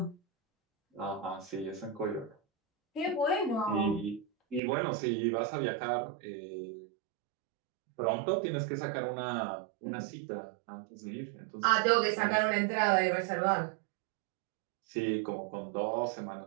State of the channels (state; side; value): drops out; left; at 4.6 s